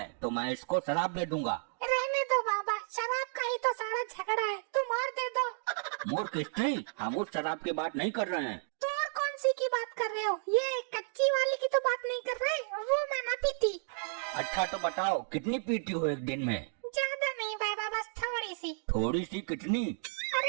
तो मैं इसको शराब दे दूंगा। रहने दो बाबा, शराब का ही तो सारा झगड़ा है, तुम और दे दो। मूर्ख स्त्री, हम उस शराब की बात नहीं कर रहे हैं। तो और कौन सी की बात कर रहे हो? ये कच्ची वाली की तो बात नहीं कर रहे, वो मैं ना पीती। अच्छा तो बताओ, कितनी पीती हो एक दिन में? ज्यादा नहीं बाबा, बस थोड़ी सी। थोड़ी सी कितनी?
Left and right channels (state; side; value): silent; left; digital silence